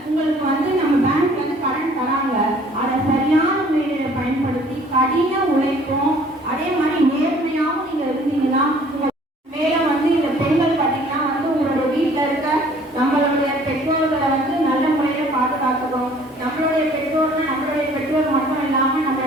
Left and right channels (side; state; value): both; normal; correlation 0.55